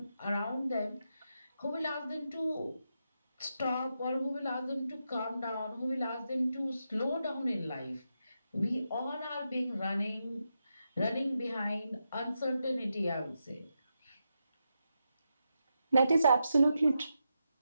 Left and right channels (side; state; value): both; inverted; correlation -0.86